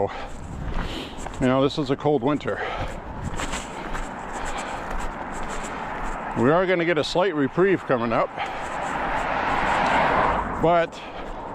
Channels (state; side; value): identical; both; correlation 1.00